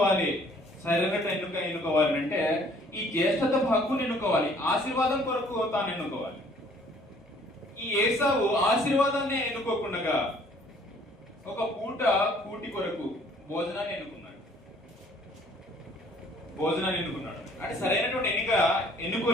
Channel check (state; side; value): normal; both; correlation 0.58